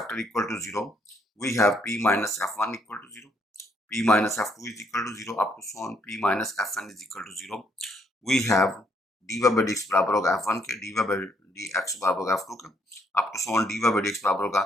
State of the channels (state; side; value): normal; both; correlation 0.71